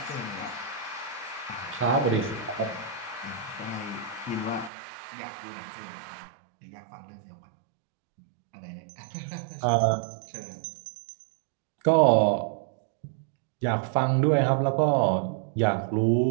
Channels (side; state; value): left; drops out; at 4.7 s